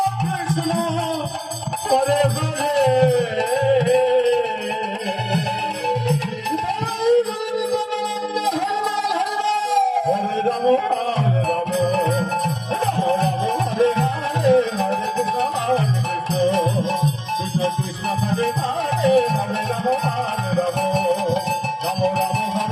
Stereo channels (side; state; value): both; identical; correlation 1.00